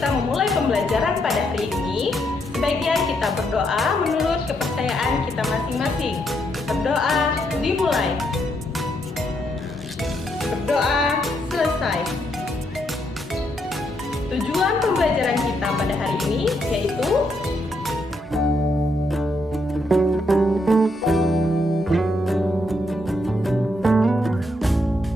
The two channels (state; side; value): normal; both; correlation 0.77